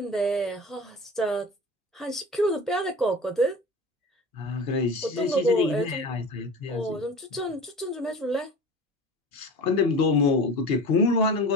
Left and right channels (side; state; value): both; normal; correlation 0.35